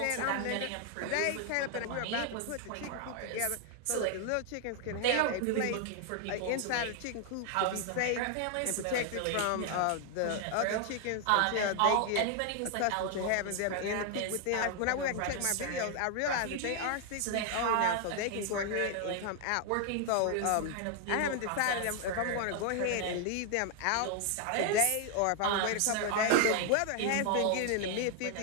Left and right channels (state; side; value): different; both; correlation 0.00